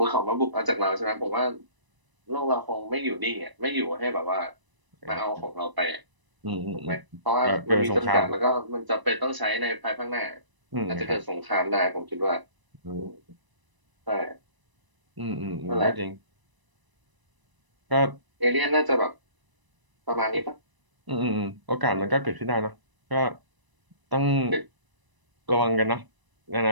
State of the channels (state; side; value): late; left; 1.0 ms